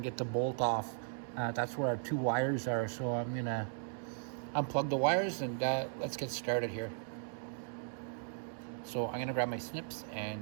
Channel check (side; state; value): left; silent; digital silence